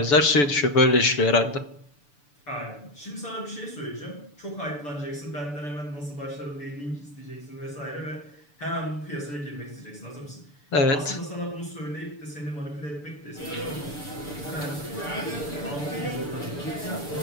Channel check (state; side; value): late; right; 6.9 ms